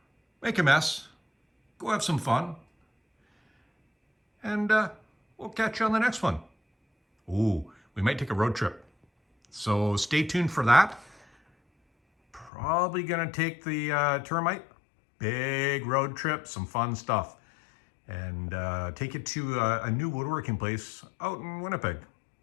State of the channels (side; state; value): right; drops out; at 12.5 s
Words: make a mess, go have some fun, and we'll catch you on the next one. Ooh, we might take a road trip, so stay tuned for that. Probably gonna take the termite, big road trip, some fun stuff, and take it to a new woodworking place out in Winnipeg.